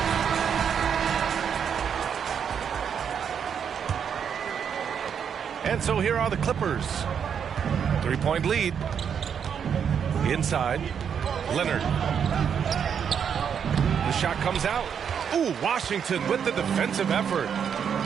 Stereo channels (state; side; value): quieter; left; 7.6 dB